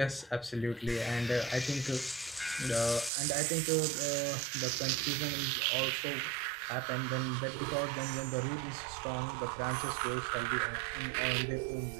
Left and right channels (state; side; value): drops out; left; at 3.1 s